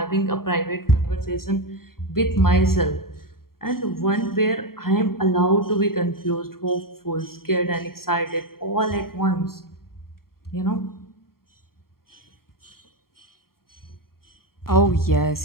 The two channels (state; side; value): late; right; 0.93 ms